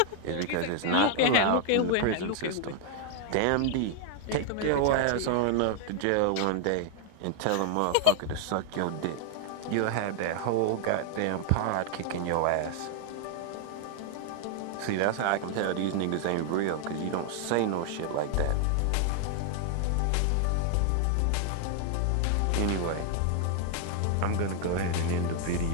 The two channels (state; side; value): different; both; correlation 0.00